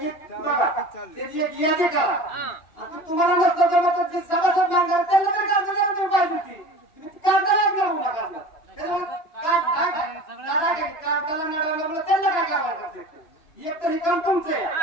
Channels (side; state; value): right; late; 2.9 ms